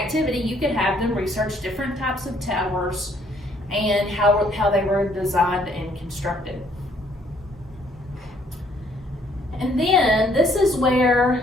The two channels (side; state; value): both; normal; correlation 0.65